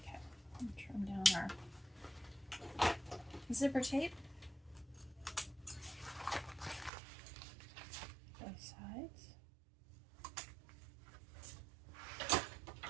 Zipper tape, both sides.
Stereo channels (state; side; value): drops out; left; at 6.9 s